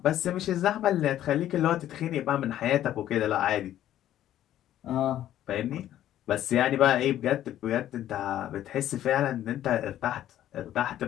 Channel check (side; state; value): right; quieter; 12.2 dB